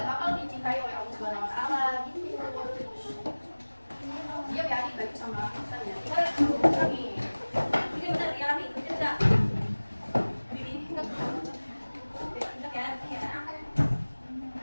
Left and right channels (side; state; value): both; inverted; correlation -1.00